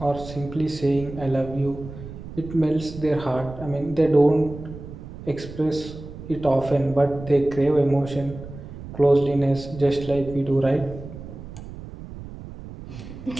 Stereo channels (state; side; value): noise; right; rumble, 13 dB below the sound